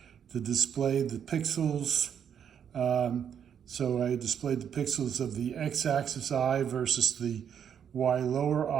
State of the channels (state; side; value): quieter; left; 8.3 dB